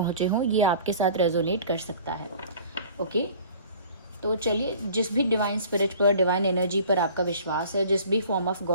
हों, ये आपके साथ रेजोनेट कर सकता है। ओके, तो चलिए, जिस भी डिवाइन स्पिरिट पर, डिवाइन एनर्जी पर आपका विश्वास है, जिस भी फॉर्म ऑफ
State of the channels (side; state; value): both; inverted; correlation -0.47